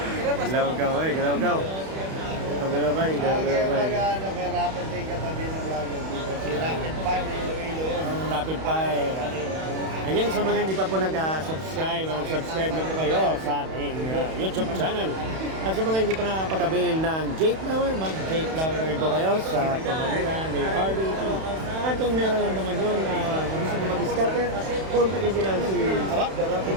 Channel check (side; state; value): left; late; 31 ms